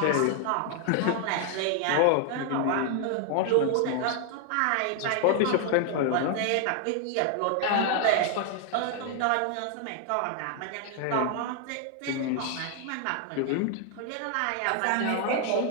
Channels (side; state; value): both; different; correlation 0.00